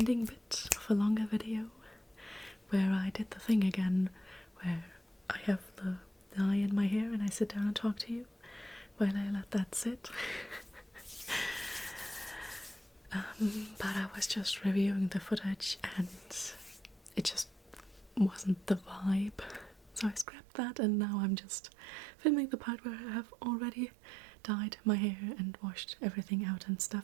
bit of a longer video where I did the thing again where I have the dye in my hair and I sit down and talk to you while I let that sit. But I was just reviewing the footage and it just wasn't the vibe, so I scrapped that, and now I'm just filming the part where I have already dyed my hair and washed everything out and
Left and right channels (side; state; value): left; drops out; at 20.2 s